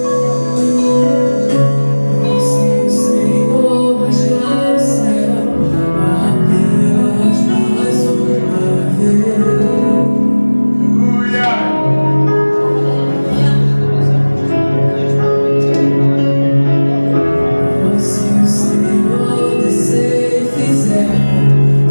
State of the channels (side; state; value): both; inverted; correlation -1.00